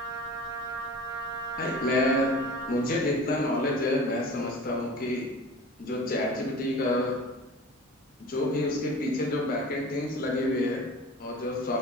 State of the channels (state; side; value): normal; both; correlation 0.39